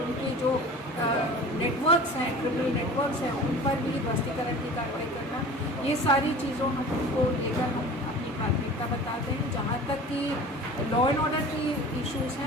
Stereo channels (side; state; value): both; normal; correlation 0.40